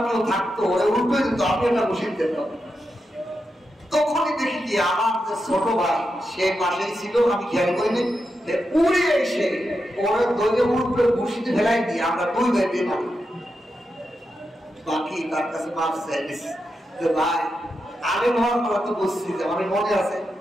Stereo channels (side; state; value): both; normal; correlation 0.87